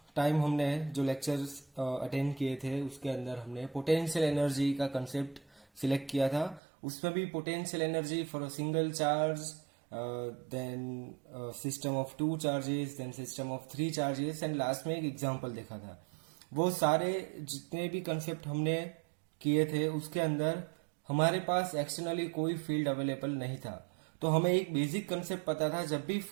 time हमने जो lectures attend किए थे उसके अंदर हमने पोटेंशियल एनर्जी का कंसेप्ट सिलेक्ट किया था. उसमें भी potential energy for a single charge, then system of 2 charges, then system of 3 charges and last में एक एग्जांपल देखा था. वो सारे जितने भी कंसेप्ट हमने किए थे उसके अंदर हमारे पास एक्सटर्नली कोई फील्ड अवेलेबल नहीं था. तो हमें एक बेसिक कंसेप्ट पता था, जब भी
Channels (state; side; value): drops out; left; at 6.6 s